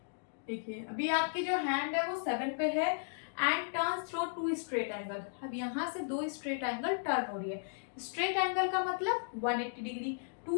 देखिए अभी आपकी जो हैंड है वो 7 पे है and turns through 2 straight angle. अब यहाँ से 2 स्ट्रेट एंगल टर्न हो रही है। स्ट्रेट एंगल का मतलब 180 डिग्री,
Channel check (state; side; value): silent; right; digital silence